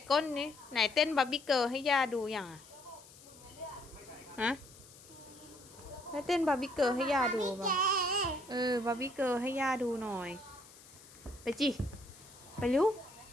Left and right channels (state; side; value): noise; left; hiss, 21 dB below the sound